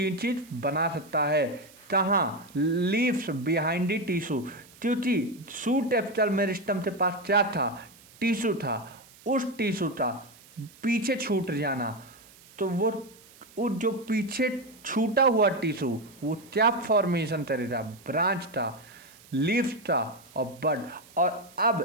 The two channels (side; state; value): right; noise; hiss, 24 dB below the sound